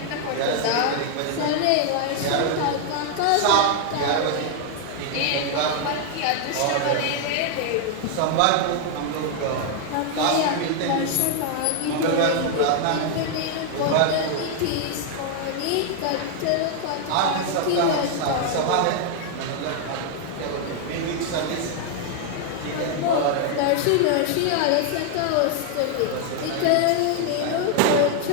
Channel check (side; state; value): both; different; correlation 0.00